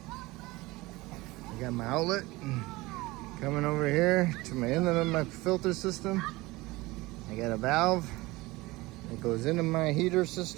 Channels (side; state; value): left; quieter; 21.0 dB